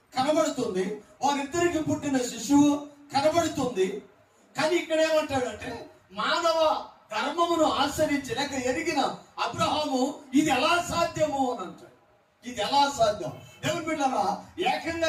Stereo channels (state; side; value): identical; both; correlation 1.00